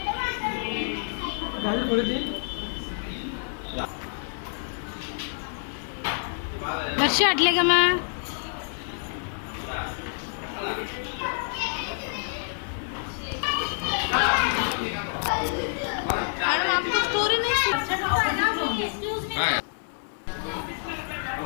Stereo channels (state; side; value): silent; right; 60 dB below the other